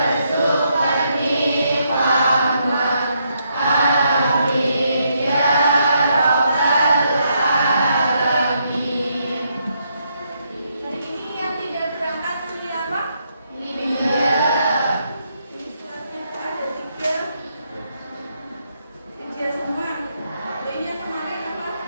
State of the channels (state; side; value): inverted; both; correlation -0.77